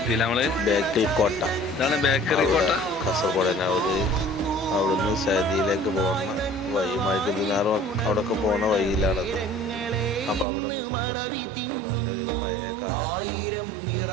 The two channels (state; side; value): drops out; left; at 10.5 s